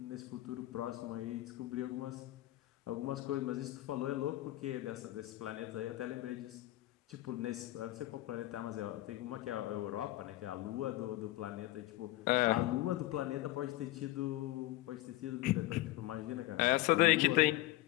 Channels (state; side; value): quieter; right; 16.8 dB